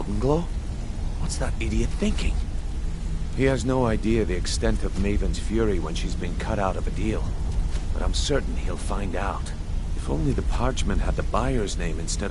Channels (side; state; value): both; identical; correlation 1.00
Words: Glow? What's that idiot thinking? He has no idea the extent of Maven's fury when she's been cut out of a deal. But I'm certain he'll find out. If only the parchment had the buyer's name instead